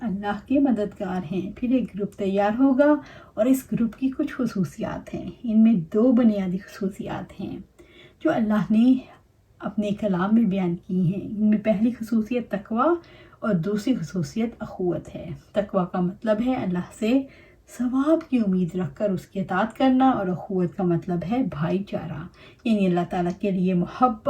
اللہ کے مددگار ہیں۔ پھر ایک گروپ تیار ہوگا اور اس گروپ کی کچھ خصوصیات ہیں۔ ان میں دو بنیادی خصوصیات ہیں جو اللہ نے اپنے کلام میں بیان کی ہیں۔ ان میں پہلی خصوصیت تقوی اور دوسری خصوصیت اخوت ہے۔ تقوی کا مطلب ہے اللہ سے ثواب کی امید رکھ کر اس کی اطاعت کرنا، اور اخوت کا مطلب ہے بھائی چارہ، یعنی اللہ تعالیٰ کے لیے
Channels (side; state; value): both; identical; correlation 1.00